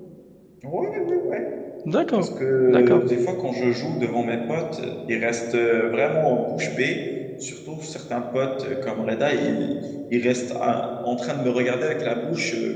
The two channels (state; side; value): identical; both; correlation 1.00